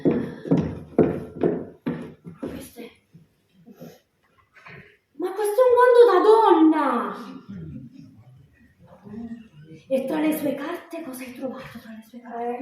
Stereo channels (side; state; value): both; identical; correlation 1.00